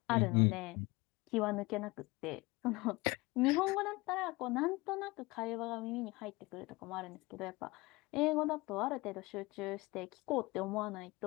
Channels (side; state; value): right; quieter; 22.8 dB